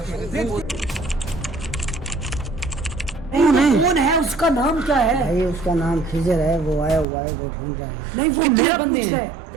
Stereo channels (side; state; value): left; drops out; at 7.1 s